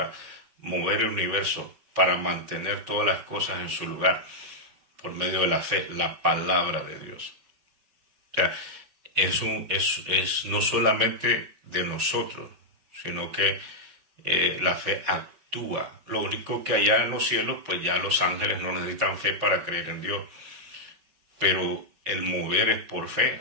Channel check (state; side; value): late; left; 5.3 ms